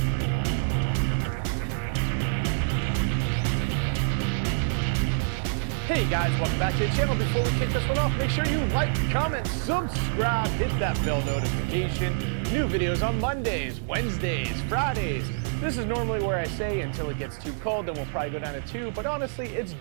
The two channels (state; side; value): silent; left; digital silence